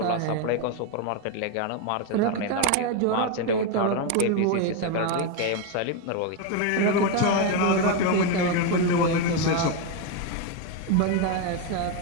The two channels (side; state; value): both; different; correlation 0.02